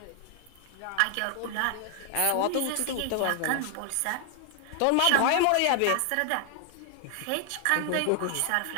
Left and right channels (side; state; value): both; different; correlation 0.00